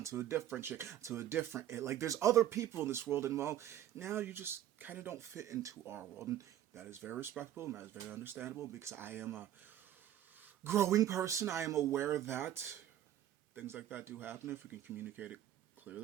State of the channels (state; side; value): quieter; left; 11.8 dB